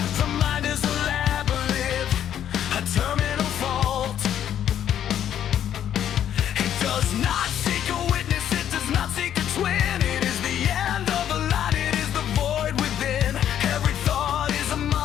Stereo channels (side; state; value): right; quieter; 10.2 dB